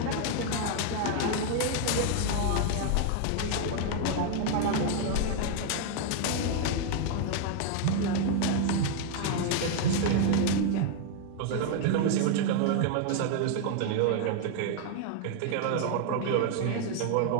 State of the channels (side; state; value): both; different; correlation 0.00